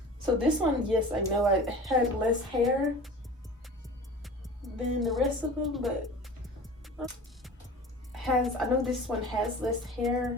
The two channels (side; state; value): both; normal; correlation 0.39